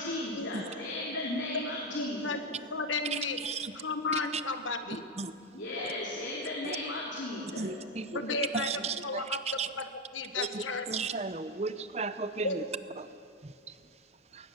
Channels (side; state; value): both; normal; correlation 0.09